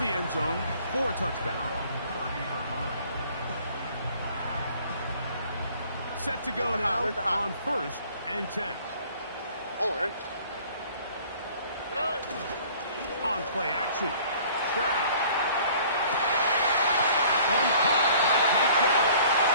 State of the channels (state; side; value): inverted; both; correlation -0.53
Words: the end zone for a touchback. Set to go now on 1st and 10. Oh, Eric. On play action. Stroud. That one caught by Tank Dell.